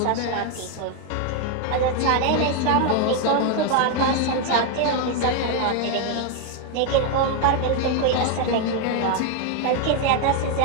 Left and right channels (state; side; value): different; both; correlation 0.01